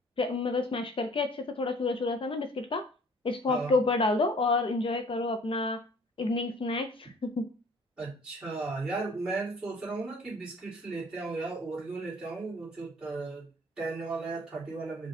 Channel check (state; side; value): normal; both; correlation 0.53